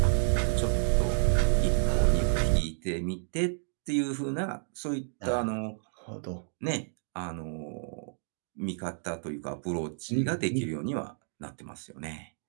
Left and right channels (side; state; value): left; silent; digital silence